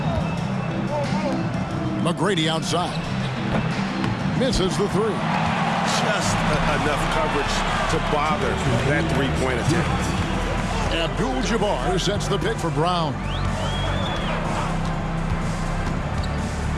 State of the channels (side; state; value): both; identical; correlation 1.00